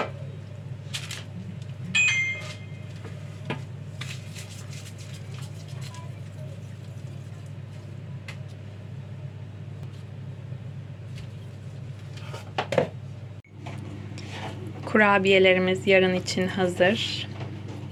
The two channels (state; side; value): identical; both; correlation 1.00